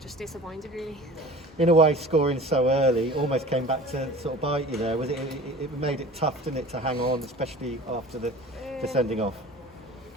disappointed really. In a way, scoring so early almost came back to sort of bite you there. Was it made it tough, didn't it, to hang on, especially after the sending off?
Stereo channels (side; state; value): both; normal; correlation 0.41